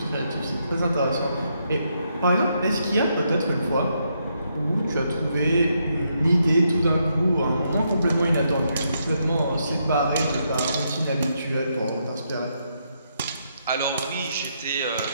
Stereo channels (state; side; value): inverted; both; correlation -0.78